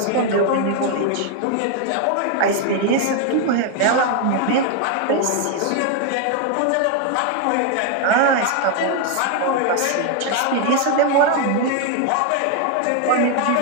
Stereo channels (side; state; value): both; different; correlation 0.01